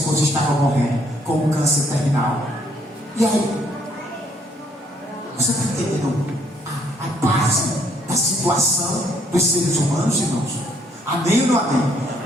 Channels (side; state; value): both; normal; correlation 0.67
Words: estava morrendo com um câncer terminal. E aí, você está entendendo a base da situação dos seres humanos, irmãos? Amém ou não amém?